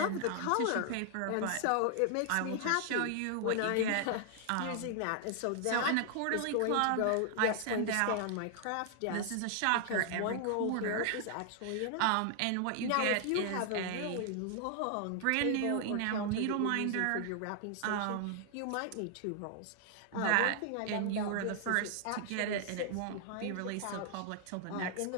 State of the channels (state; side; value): different; both; correlation 0.00